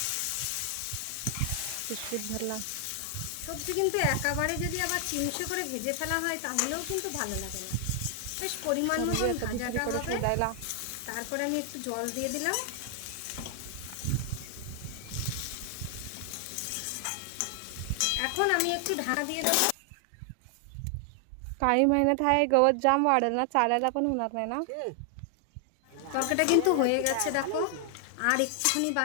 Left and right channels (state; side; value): different; both; correlation 0.00